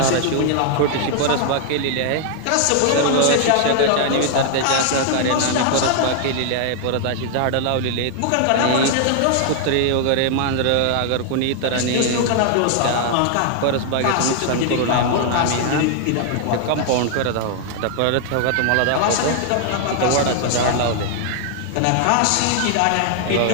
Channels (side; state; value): both; different; correlation 0.00